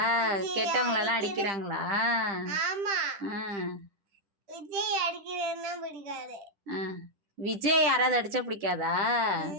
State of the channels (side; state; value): left; late; 10 ms